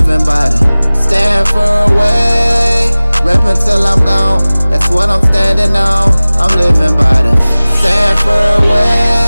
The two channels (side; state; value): both; inverted; correlation -0.99